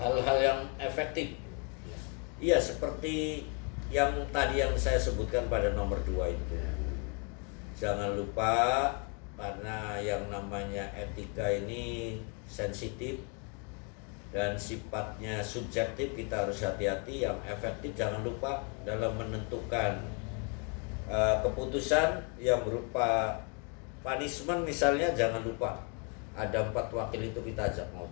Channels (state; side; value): quieter; right; 36.3 dB